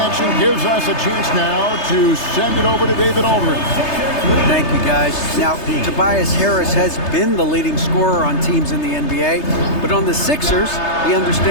gives us a chance now to send it over to David Aldridge. Thank you, guys. Now, Tobias Harris has been the leading scorer on teams in the NBA, but on the Sixers, he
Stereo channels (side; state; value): right; late; 3.3 ms